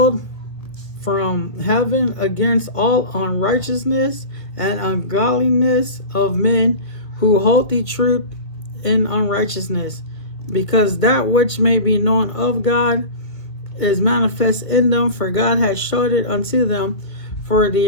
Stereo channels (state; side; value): late; right; 1.8 ms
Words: from heaven against all unrighteousness and ungodliness of men who hold the truth in unrighteousness, because that which may be known of God is manifest in them, for God has showed it unto them. For